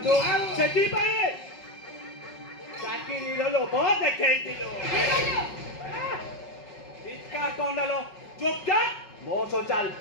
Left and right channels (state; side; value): late; right; 5.4 ms